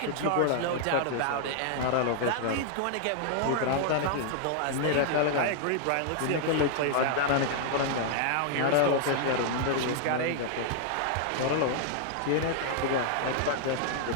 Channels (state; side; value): different; both; correlation -0.01